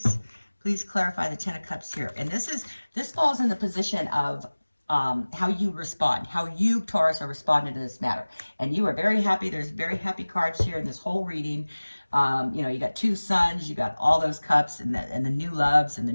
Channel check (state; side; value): inverted; both; correlation -1.00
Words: Please clarify the 10 of Cups here. And this falls in the position of how you respond, how you, Taurus, are responding to this matter. And you are very happy. There's very happy cards here in this whole reading. You know, you got two suns, you got all those cups and the new loves and the